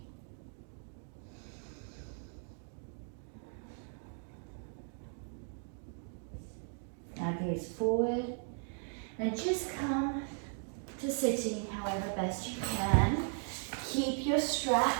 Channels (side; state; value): left; silent; 53 dB below the other